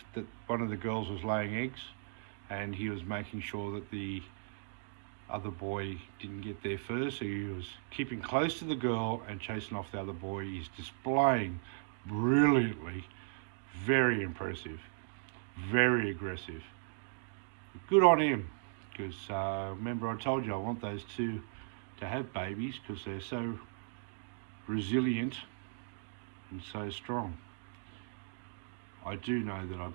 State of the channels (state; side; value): silent; left; digital silence